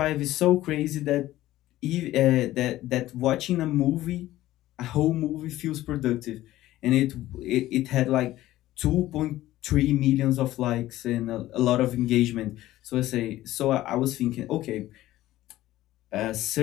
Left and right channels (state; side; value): quieter; right; 15.4 dB